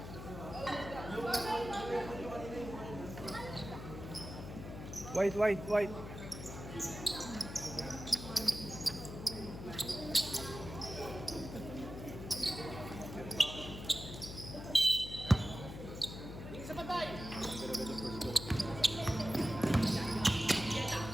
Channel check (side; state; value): left; noise; hum, 9 dB below the sound